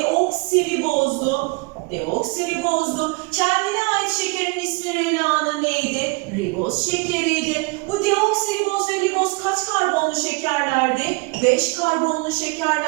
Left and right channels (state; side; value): quieter; left; 28.9 dB